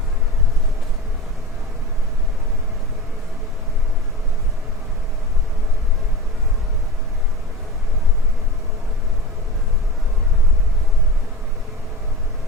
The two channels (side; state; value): both; normal; correlation 0.32